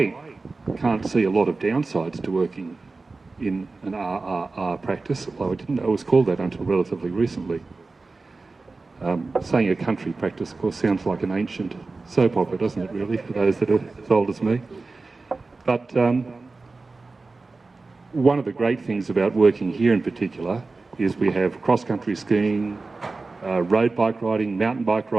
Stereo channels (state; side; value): quieter; left; 3.7 dB